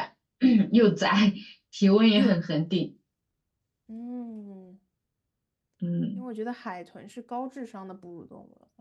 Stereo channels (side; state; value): both; identical; correlation 1.00